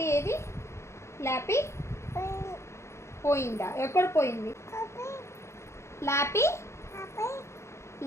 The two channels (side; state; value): right; late; 0.13 ms